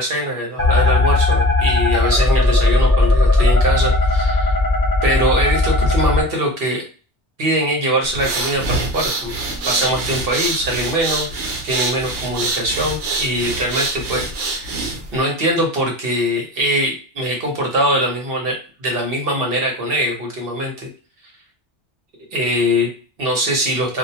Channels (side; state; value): both; normal; correlation 0.33